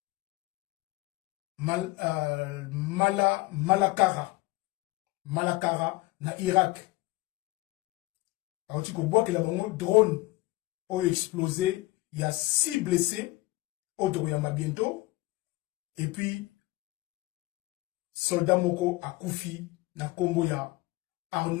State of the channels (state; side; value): quieter; right; 20.6 dB